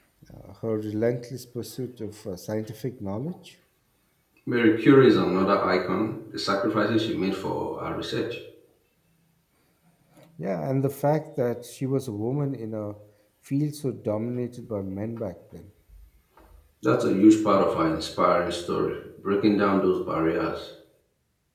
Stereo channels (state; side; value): identical; both; correlation 1.00